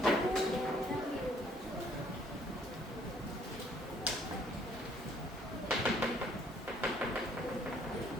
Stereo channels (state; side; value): normal; both; correlation 0.62